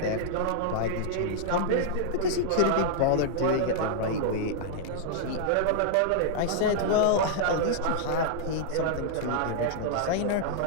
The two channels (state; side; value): different; both; correlation -0.01